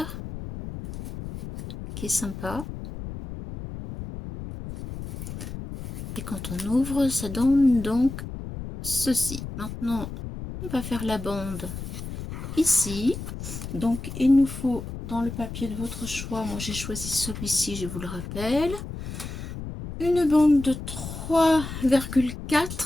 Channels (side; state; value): left; noise; rumble, 8 dB below the sound